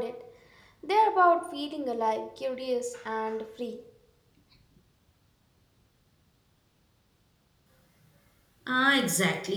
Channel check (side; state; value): both; identical; correlation 1.00